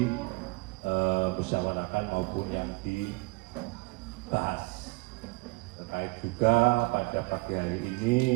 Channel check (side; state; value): left; quieter; 26.2 dB